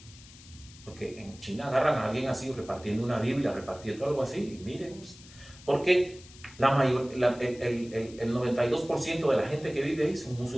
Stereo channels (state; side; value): noise; left; hiss, 21 dB below the sound